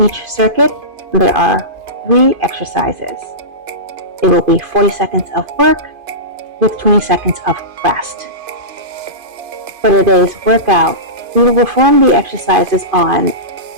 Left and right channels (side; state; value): left; late; 2.5 ms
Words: circuit, there are 3 exercises. It will be 40 seconds of work with 20 seconds of rest. For today's workout, we will perform the exercises on